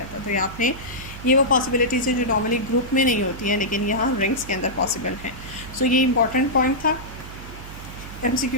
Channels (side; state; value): right; noise; hum, 13 dB below the sound